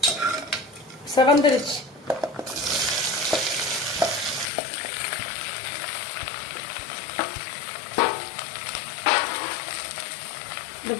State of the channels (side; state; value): right; drops out; at 4.5 s